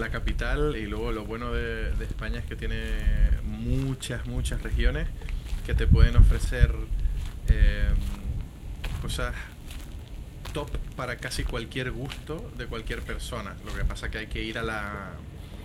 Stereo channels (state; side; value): identical; both; correlation 1.00